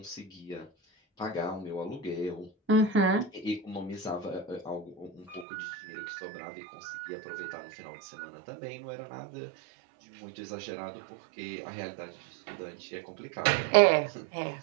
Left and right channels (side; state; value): left; drops out; at 5.5 s